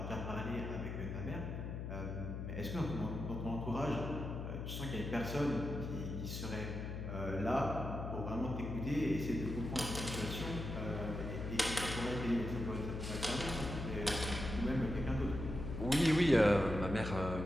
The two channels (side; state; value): left; noise; hum, 5 dB below the sound